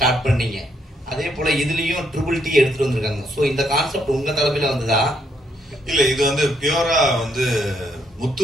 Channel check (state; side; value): normal; both; correlation 0.73